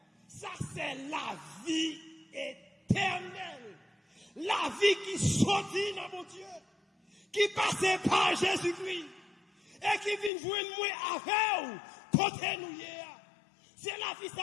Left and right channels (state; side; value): drops out; right; at 10.3 s